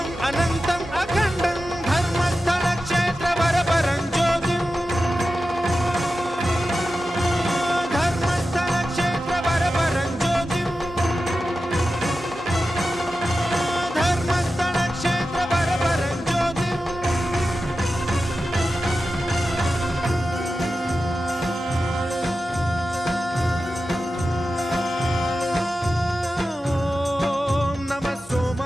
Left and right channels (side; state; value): both; normal; correlation 0.93